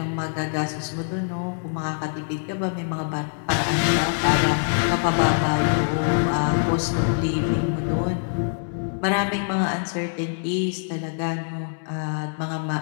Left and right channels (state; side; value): silent; right; digital silence